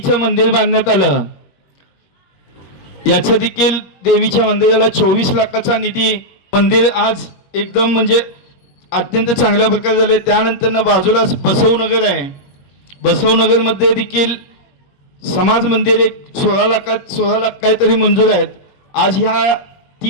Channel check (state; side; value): late; right; 21 ms